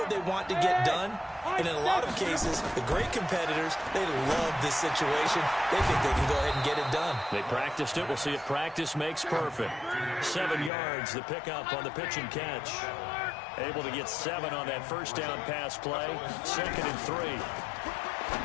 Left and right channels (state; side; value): drops out; right; at 10.7 s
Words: they want to get done. And in a lot of cases, the great competitors, they love this situation. They think they can go ahead and get it done. They practiced it. We'll see if practice makes perfect. 7 yards, the pickup on the pitch and catch. Able to get 7 on that first down pass play. 2nd and 3.